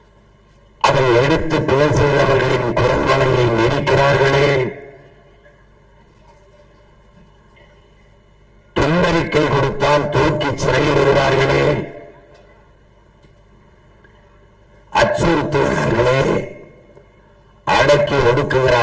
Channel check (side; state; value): both; identical; correlation 1.00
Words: அதை எடுத்து பேசுகிறவர்களின் குரல்வளையை நெரிக்கிறார்களே. துண்டறிக்கை கொடுத்தால் தூக்கி சிறையில் விடுவார்களே, அச்சுறுத்துகிறார்களே, அடக்கி